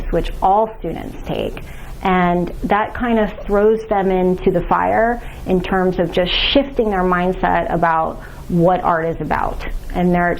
which all students take. And that kind of throws them into the fire in terms of just shifting their mindset about what art is about. And they're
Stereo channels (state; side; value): identical; both; correlation 1.00